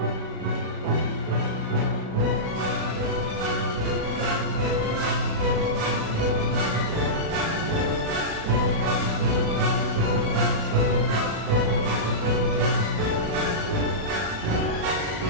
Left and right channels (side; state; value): left; late; 37 ms